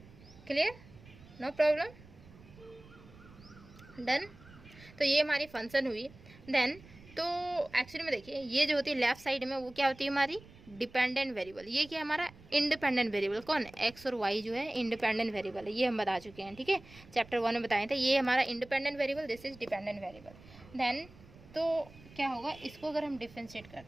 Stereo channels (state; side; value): noise; right; rumble, 21 dB below the sound